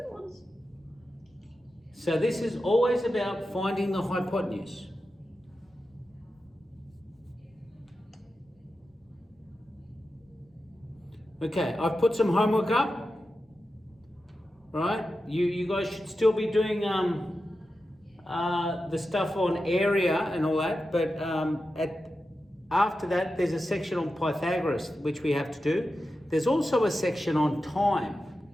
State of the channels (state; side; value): normal; both; correlation 0.91